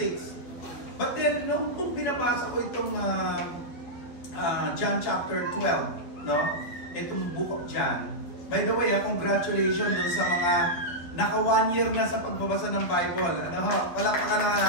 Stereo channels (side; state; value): right; late; 12 ms